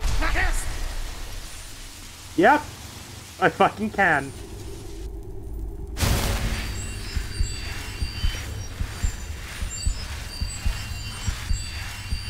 Yep! I fucking can.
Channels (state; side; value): identical; both; correlation 1.00